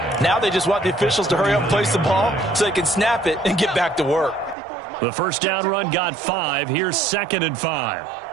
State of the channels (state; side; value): drops out; left; at 4.5 s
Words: Now they just want the officials to hurry up and place the ball so they can snap it and get back to work. The first down run got 5. Here's 2nd and 5.